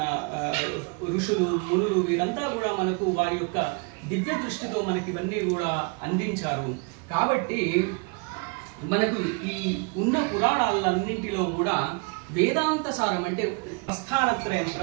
ఋషులు, మునులు. వీరంతా కూడా మనకు వారి యొక్క దివ్య దృష్టితో మనకి ఇవన్నీ కూడా అందించారు. కాబట్టి మనకు ఈ ఉన్న పురాణాలన్నింటిలో కూడా వేదాంత సారం అంటే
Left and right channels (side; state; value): left; quieter; 32.8 dB